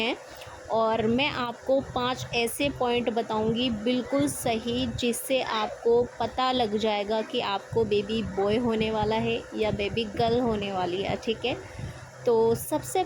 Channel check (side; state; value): both; identical; correlation 1.00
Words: और मैं आपको 5 ऐसे पॉइंट बताऊंगी बिल्कुल सही, जिससे आपको पता लग जाएगा कि आपको बेबी बॉय होने वाला है या बेबी गर्ल होने वाली है। ठीक है, तो सबसे